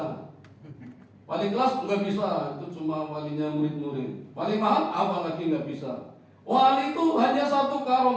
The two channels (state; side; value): identical; both; correlation 1.00